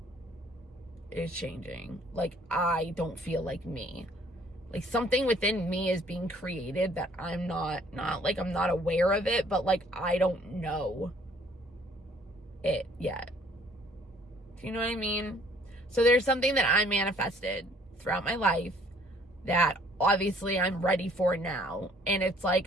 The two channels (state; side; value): normal; both; correlation 0.59